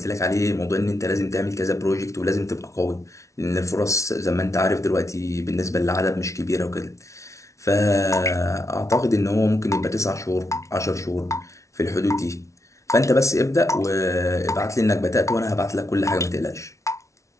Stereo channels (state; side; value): late; right; 0.14 ms